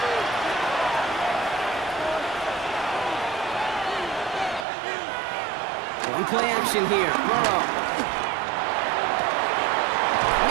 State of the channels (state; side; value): drops out; left; at 4.7 s